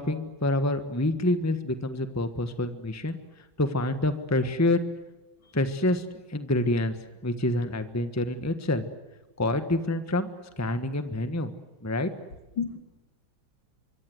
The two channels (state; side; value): normal; both; correlation 0.31